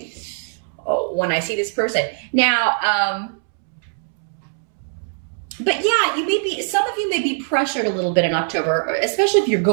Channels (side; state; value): left; silent; 65 dB below the other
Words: I see this person. Now, but yeah, you may be, some of you may be pressured a little bit in October, especially if you're